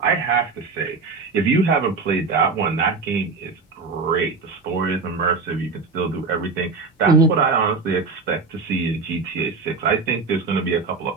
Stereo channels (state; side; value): quieter; left; 4.3 dB